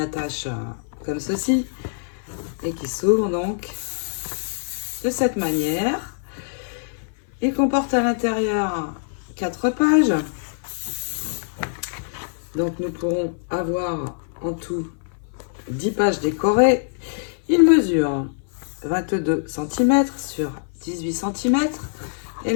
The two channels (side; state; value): right; silent; 57 dB below the other